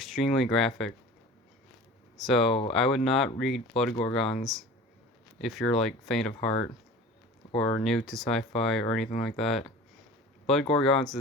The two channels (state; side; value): normal; both; correlation 0.39